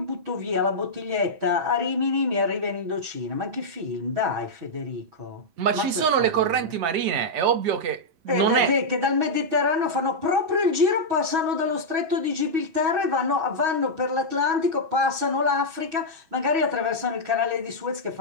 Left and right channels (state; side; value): late; left; 6.1 ms